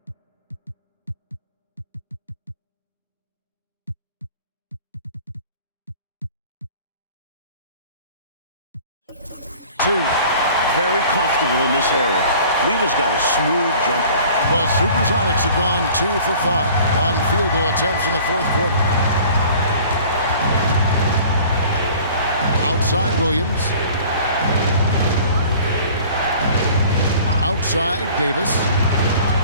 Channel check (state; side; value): inverted; both; correlation -0.48